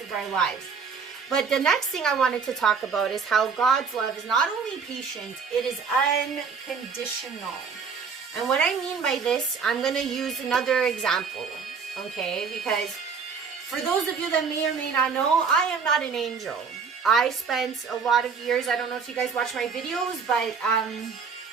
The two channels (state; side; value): quieter; left; 5.7 dB